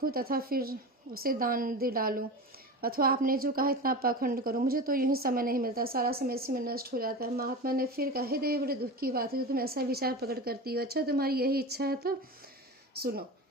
तथा फिर उसे दान दे डालूं, अथवा आपने जो कहा इतना पाखंड करूं। मुझे तो यूं ही समय नहीं मिलता, सारा समय इसी में नष्ट हो जाता है। महात्मा ने फिर कहा, हे देवी, बड़े दुख की बात है जो तुम ऐसा विचार प्रकट करती हो। अच्छा, तुम्हारी यही इच्छा है तो सुनो,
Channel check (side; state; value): both; normal; correlation 0.27